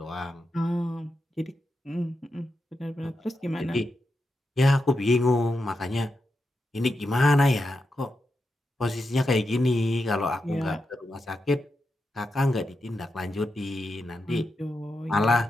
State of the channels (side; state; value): both; normal; correlation 0.87